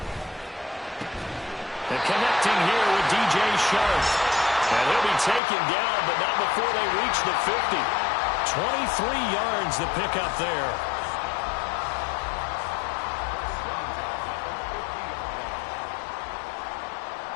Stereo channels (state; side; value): drops out; right; at 5.4 s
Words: And connecting here with DJ Sharp. And he'll be taken down, but not before they reach the 50. 23 yards the pickup there.